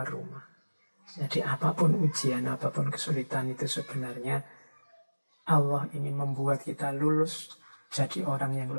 rumah. Jadi apapun ujian, apapun kesulitan itu sebenarnya Allah ingin membuat kita lulus jadi orang yang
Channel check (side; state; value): both; inverted; correlation -1.00